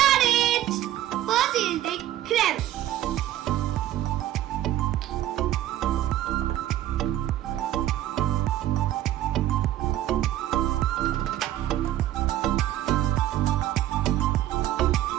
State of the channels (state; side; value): quieter; left; 13.2 dB